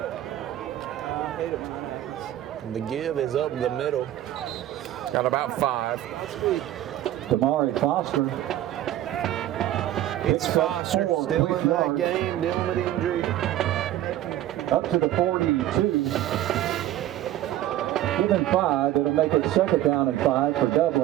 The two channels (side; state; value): left; quieter; 13.3 dB